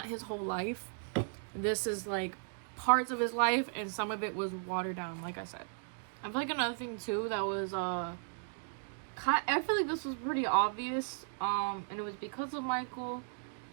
his whole life. This is, like, parts of his life, and some of it was watered down, like I said. I feel like another thing, too, that was, I feel like this was pretty obvious, and it was because of Michael,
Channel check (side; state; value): left; silent; digital silence